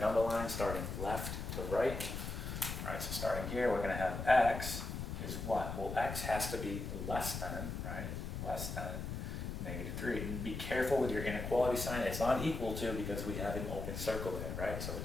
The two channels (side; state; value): left; noise; rumble, 5 dB below the sound